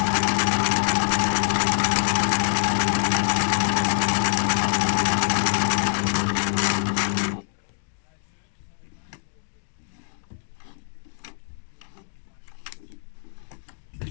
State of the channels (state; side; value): silent; right; digital silence